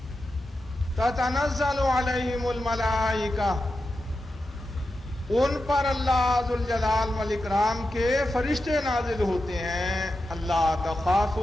تتنزل علیہم الملائکہ، ان پر اللہ ذوالجلال والاکرام کے فرشتے نازل ہوتے ہیں. اللہ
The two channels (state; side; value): normal; both; correlation 0.90